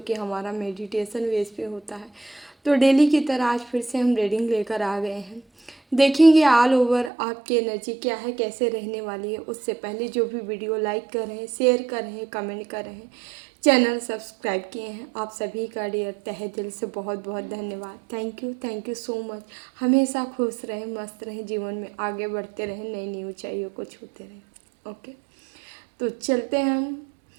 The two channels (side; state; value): left; drops out; at 7.1 s